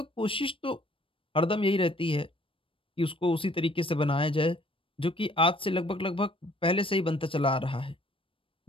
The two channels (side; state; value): right; late; 0.26 ms